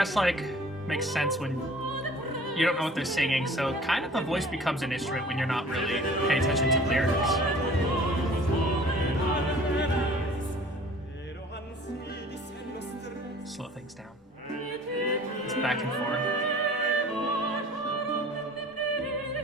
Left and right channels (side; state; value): both; normal; correlation 0.48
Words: like makes sense when you don't know what they're singing, so kind of the voice becomes an instrument when you're not really paying attention to lyrics. Slow things down. It's back and forth.